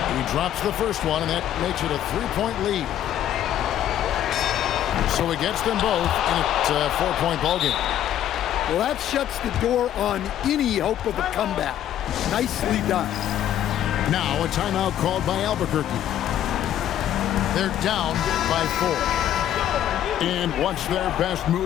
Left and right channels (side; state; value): right; quieter; 11.3 dB